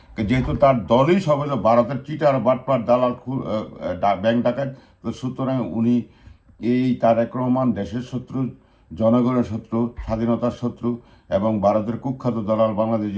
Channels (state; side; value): identical; both; correlation 1.00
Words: যেহেতু তার দলই সব হলো ভারতের চিটার বাটপার দালাল ব্যাংক ডাকাত। তো সুতরাং উনি এই তারেক রহমান দেশের শত্রু, জনগণের শত্রু, স্বাধীনতার শত্রু এবং ভারতের কুখ্যাত দালাল। বাংলাদেশ